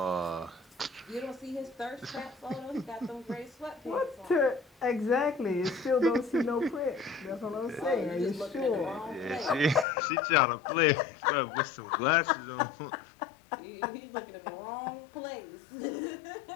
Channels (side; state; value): right; drops out; at 9.9 s